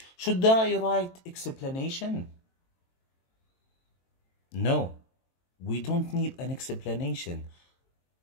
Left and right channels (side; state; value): right; late; 23 ms